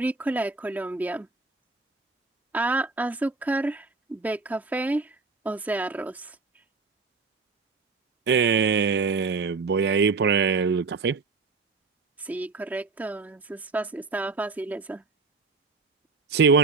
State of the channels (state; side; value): quieter; left; 4.4 dB